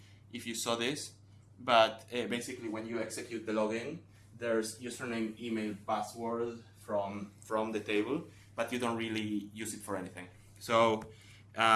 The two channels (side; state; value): both; identical; correlation 1.00